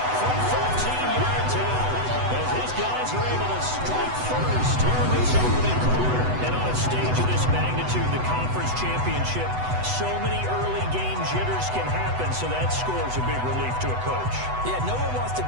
From 14-yard out, as his guys are able to strike first here in this opening quarter. And on a stage of this magnitude, the conference championship, so many early game jitters can happen, so that scores a big relief to a coach. Yeah, no one wants to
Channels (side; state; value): left; late; 8.0 ms